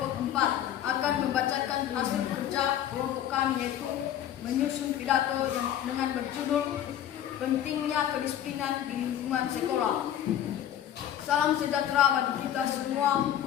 4 akan membacakan hasil kerja kelompok kami, yaitu menyusun pidato yang dengan berjudul Pentingnya Kedisiplinan di Lingkungan Sekolah. Salam sejahtera bagi kita semua.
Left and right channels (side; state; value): right; quieter; 10.9 dB